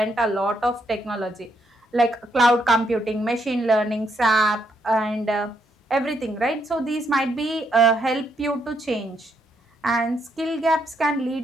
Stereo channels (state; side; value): normal; both; correlation 0.76